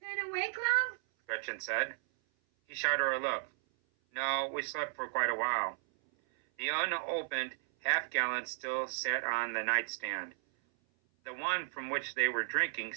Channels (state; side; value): silent; left; 55 dB below the other